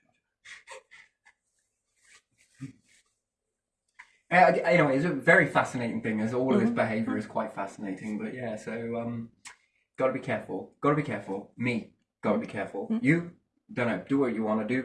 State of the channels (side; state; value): both; identical; correlation 1.00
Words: Anyway, it's a very fascinating thing, as all of this behaviour is quite fascinating. But yeah, so gotta be careful. Gotta be careful. Me, gotta be careful. You, don't know, do what you want to